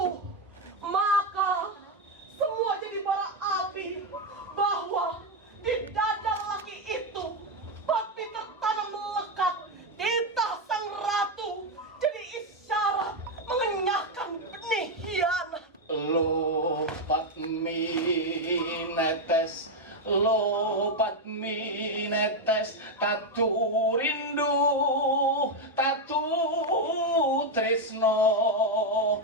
Maka semua jadi bara api bahwa di dada lelaki itu Patmi tertanam melekat titah sang ratu, jadi isyarat mengenyahkan benih hianat. Lo Patmi netes tatu rindu, tatu tresno.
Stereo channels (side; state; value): both; normal; correlation 0.05